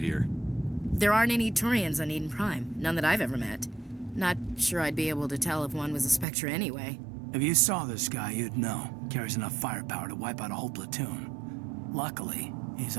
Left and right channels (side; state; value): left; drops out; at 6.2 s